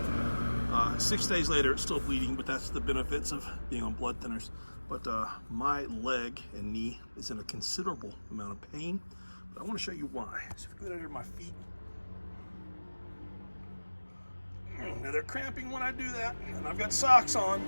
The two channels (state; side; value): inverted; both; correlation -1.00